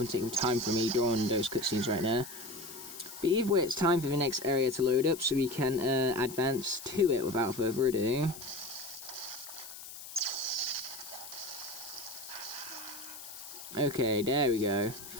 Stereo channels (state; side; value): noise; left; hiss, 13 dB below the sound